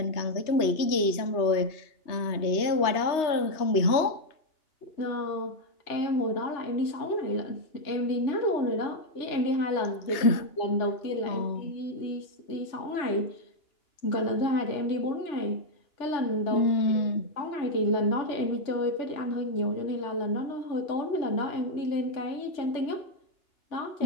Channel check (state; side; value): late; right; 3.2 ms